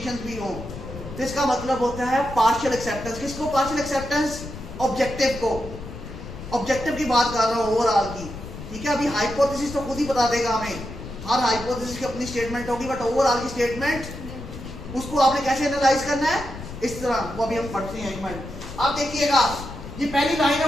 भी हो, तो इसका मतलब होता है पार्शियल एक्सेप्टेंस। किसको पार्शियल एक्सेप्टेंस? ऑब्जेक्टिव को। ऑब्जेक्टिव की बात कर रहा हूं, ओवरऑल की। ठीक है, अभी हाइपोथेसिस तो खुद ही बता देगा हमें, हर हाइपोथेसिस की अपनी स्टेटमेंट होगी, बट ओवरऑल की स्टेटमेंट उसको आपने कैसे एनालाइज करना है, इस तरह, वो अभी हम पढ़ते हैं। एक मिनट, आप देखिएगा, ये पहली लाइन है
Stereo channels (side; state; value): left; noise; rumble, 11 dB below the sound